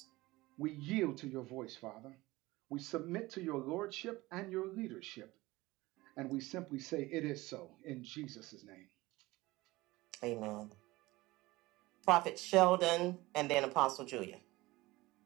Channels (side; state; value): left; quieter; 19.9 dB